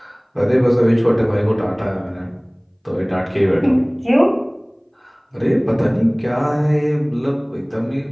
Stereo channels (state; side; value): identical; both; correlation 1.00